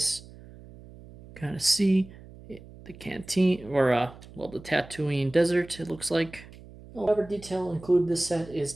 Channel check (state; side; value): noise; right; hum, 19 dB below the sound